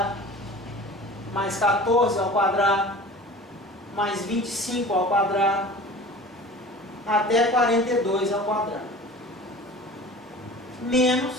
mais 14 ao quadrado mais 25 ao quadrado até 42 ao quadrado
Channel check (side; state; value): both; normal; correlation 0.40